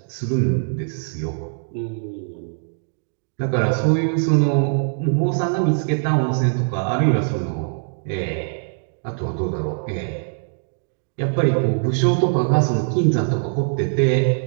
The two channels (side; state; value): left; silent; digital silence